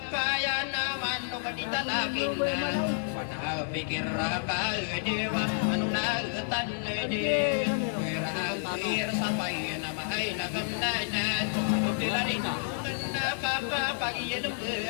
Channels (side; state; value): right; silent; digital silence